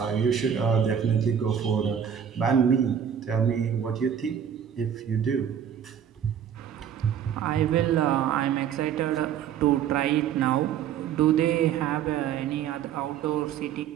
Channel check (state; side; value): quieter; left; 8.7 dB